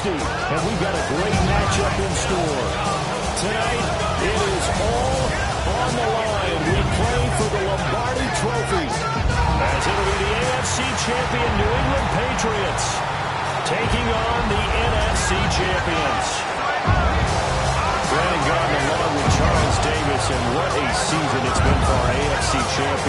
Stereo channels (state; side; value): identical; both; correlation 1.00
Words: And we've got a great matchup in store. Tonight, it is all on the line. We play for the Lombardi Trophy. As it'll be the AFC champion New England Patriots taking on the NFC champions. Brandon Gardner along with Charles Davis, and what a season it's been for our AFC